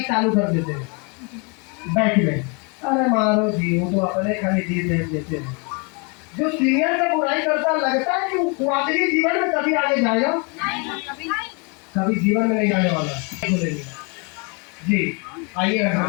चालू कर देते हैं बैठ में, अरे मारो जी वो तो अपने खाली जी देख देते हैं। जो सीनियर का बुराई करता लगता है कि वो आखिरी जीवन में कभी आगे जाएगा, कभी जीवन में नहीं जाने वाला। जी आइए घर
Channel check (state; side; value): quieter; right; 33.1 dB